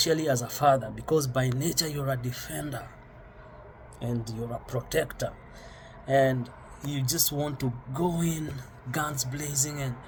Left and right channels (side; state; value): both; identical; correlation 1.00